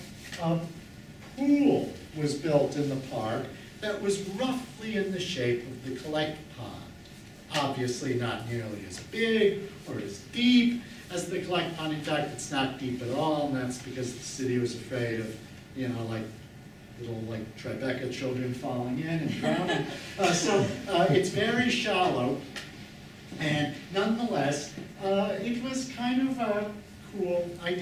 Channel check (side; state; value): both; identical; correlation 1.00